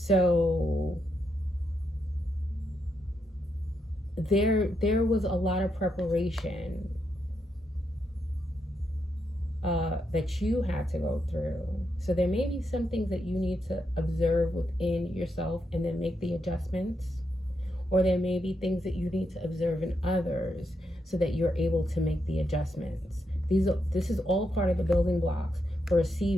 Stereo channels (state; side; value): normal; both; correlation 0.82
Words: there was a lot of preparation that you had to go through. So there may be some things that you need to observe within yourself and then make the adjustments. Or there may be things that you need to observe in others so that you're able to make the adjustments. This is all part of the building blocks for